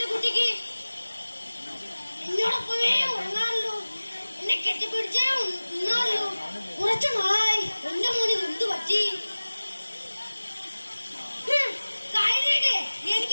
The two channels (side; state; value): both; inverted; correlation -1.00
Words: കുട്ടിക്ക്. എന്നോടൊപ്പമേ ഉറങ്ങാറല്ലോ, എന്നെ കെട്ടിപ്പിടിച്ചേ ഉണ്ണാറല്ലോ. കുറച്ചു നാളായി എന്റെ മോന് എന്ത് പറ്റി? കഴിഞ്ഞിട്ട്